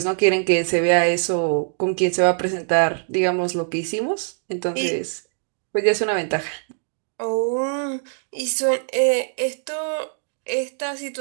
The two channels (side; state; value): left; silent; digital silence